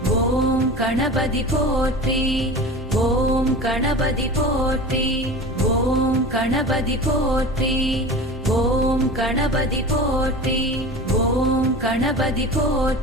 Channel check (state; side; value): normal; both; correlation 0.33